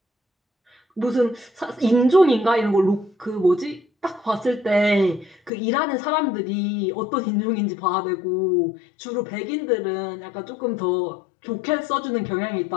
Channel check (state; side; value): drops out; right; at 5.5 s